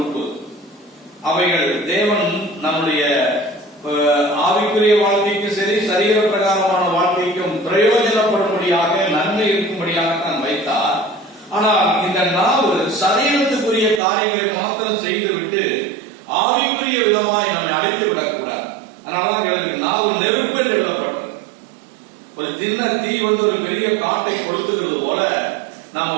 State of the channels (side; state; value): left; drops out; at 14.0 s